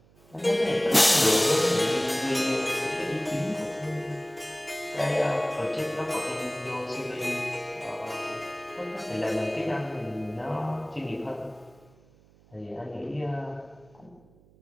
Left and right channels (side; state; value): right; noise; hum, 28 dB below the sound